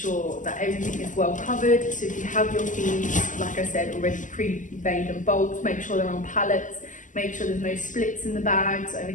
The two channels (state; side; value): late; right; 0.37 ms